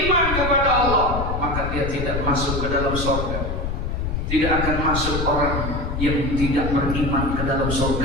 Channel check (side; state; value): left; noise; rumble, 3 dB below the sound